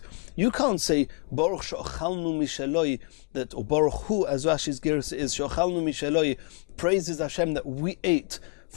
You can't say Baruch she'ochalnu mishaloi, that, or Baruch Hu, as Rashi's gersa is, she'ochalnu mishaloi, praises Hashem that we ate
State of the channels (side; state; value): right; quieter; 31.7 dB